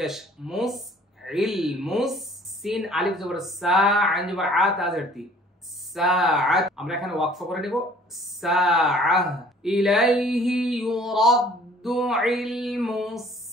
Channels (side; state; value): both; normal; correlation 0.53